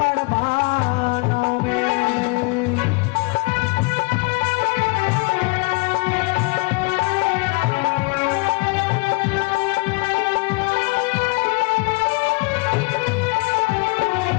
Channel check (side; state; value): right; quieter; 29.5 dB